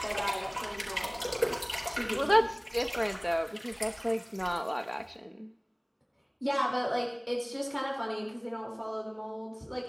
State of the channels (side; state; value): both; identical; correlation 1.00